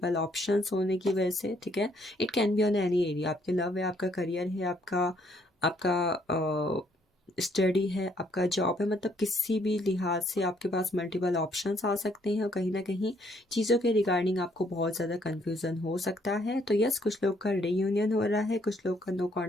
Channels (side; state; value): both; normal; correlation 0.68